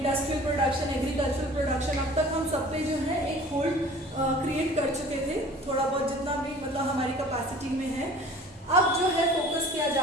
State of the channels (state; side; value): normal; both; correlation 0.46